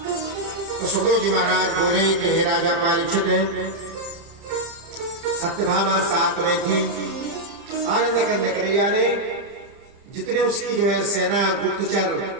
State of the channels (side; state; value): left; late; 30 ms